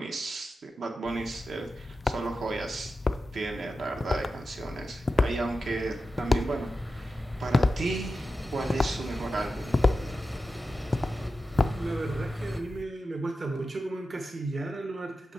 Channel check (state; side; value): normal; both; correlation 0.92